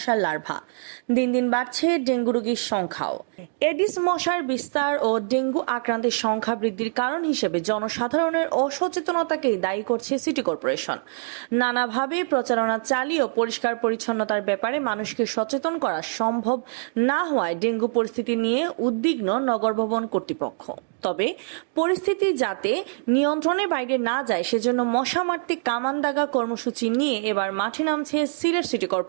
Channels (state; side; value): silent; left; digital silence